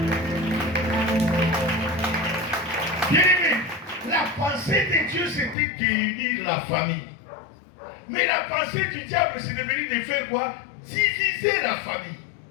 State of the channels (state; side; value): drops out; right; at 5.6 s